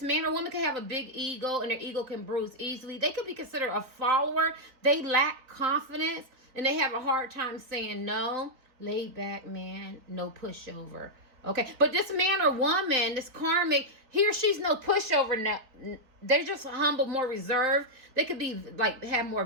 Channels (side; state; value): left; late; 4.1 ms